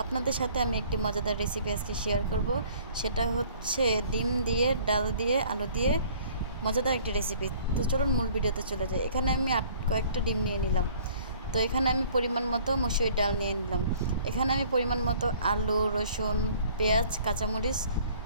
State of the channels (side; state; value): both; inverted; correlation -0.54